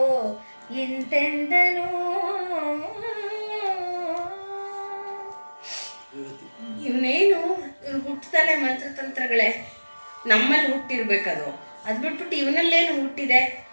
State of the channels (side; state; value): both; inverted; correlation -1.00